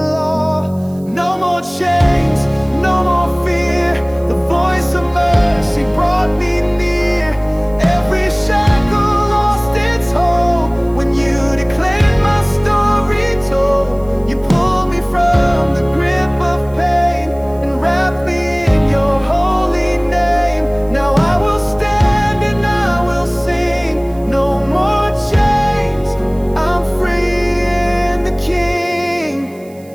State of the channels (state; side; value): noise; right; hiss, 27 dB below the sound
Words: No more chains, no more fear. The voice of mercy brought me near. Every shackle lost its hold when you declared my story told. You pulled me from the grip of pain and wrapped me in your holy name. Now I will stand and I will sing. No more chains, I'm free in the